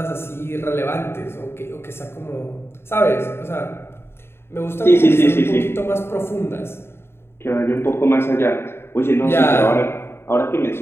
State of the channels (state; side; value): late; right; 0.12 ms